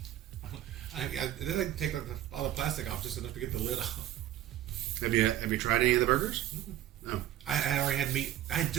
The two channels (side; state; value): left; quieter; 12.8 dB